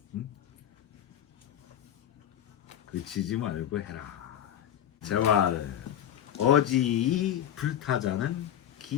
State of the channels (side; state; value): right; quieter; 10.6 dB